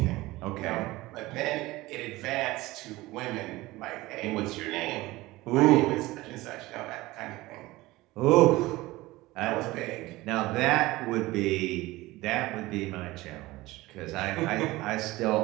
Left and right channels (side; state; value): left; quieter; 19.3 dB